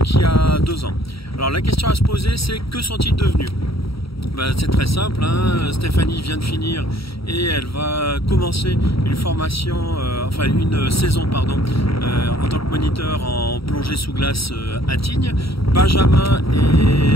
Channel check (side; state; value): right; late; 0.75 ms